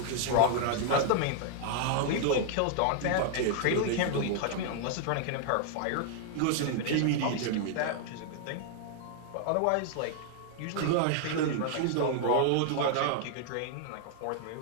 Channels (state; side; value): different; both; correlation 0.00